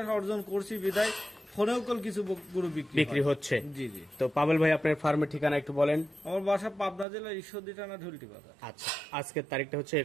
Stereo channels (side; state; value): left; drops out; at 7.1 s